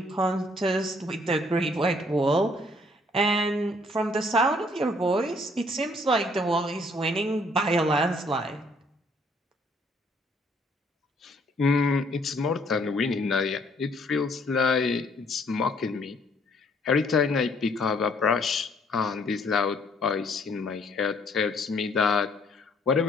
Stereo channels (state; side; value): normal; both; correlation 0.64